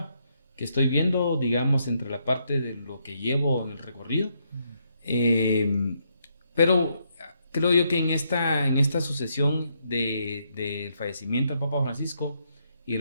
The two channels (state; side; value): inverted; both; correlation -0.76